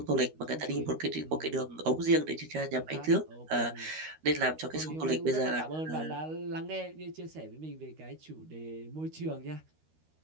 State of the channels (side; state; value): left; late; 13 ms